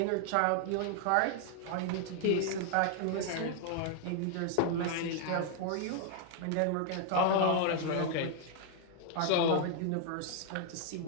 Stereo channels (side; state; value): both; different; correlation 0.00